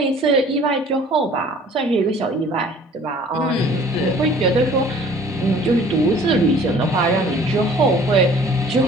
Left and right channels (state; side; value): normal; both; correlation 0.51